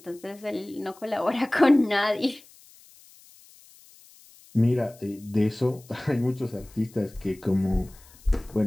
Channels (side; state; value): left; noise; hiss, 25 dB below the sound